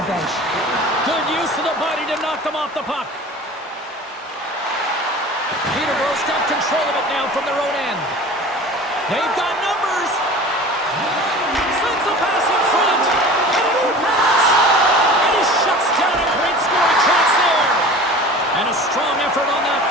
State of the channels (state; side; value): normal; both; correlation 0.39